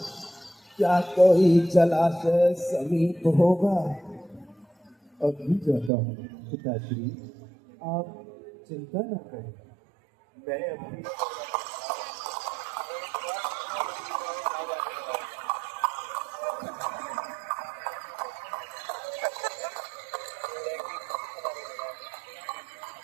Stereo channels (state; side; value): drops out; left; at 5.9 s